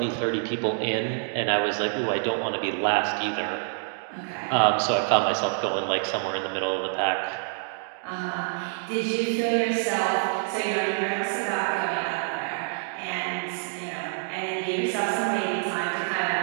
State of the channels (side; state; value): left; silent; digital silence